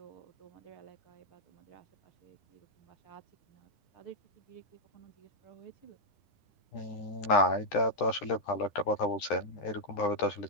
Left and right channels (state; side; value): late; right; 9.9 ms